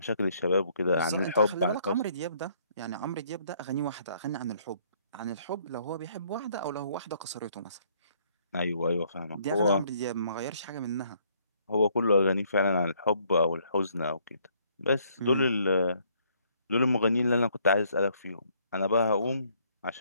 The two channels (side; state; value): both; inverted; correlation -0.66